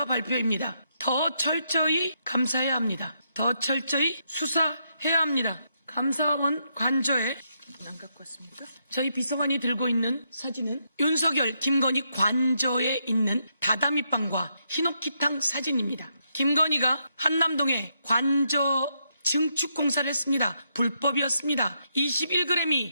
발표입니다. 더 철저히 감사해야 합니다. 더 철저히 수사해야 합니다. 감사원 관저에 안 갖고 왔습니까? 저희 비서관이 들고 있는 사진은 윤석열, 김건희 관저에 있는 다다미빵과 히노키탕 사진입니다. 김건희가 한남동에 관저 증축 공사를 했습니다. 불법이었습니다.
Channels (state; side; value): inverted; both; correlation -0.79